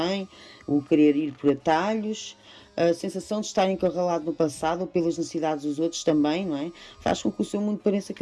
o querer ir por atalhos, a sensação de estar encurralado no passado ou pelas necessidades dos outros também, não é? Faz com que o seu mundo pareça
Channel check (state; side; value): identical; both; correlation 1.00